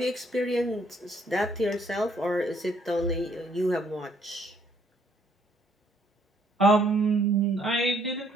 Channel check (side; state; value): both; normal; correlation 0.67